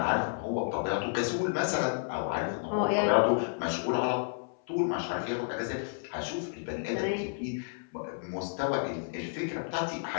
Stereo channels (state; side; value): silent; right; 57 dB below the other